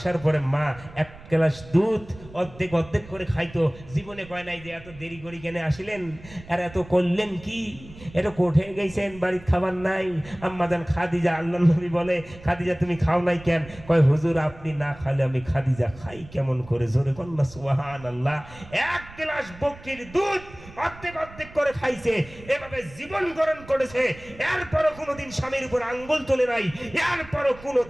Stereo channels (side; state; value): right; noise; rumble, 19 dB below the sound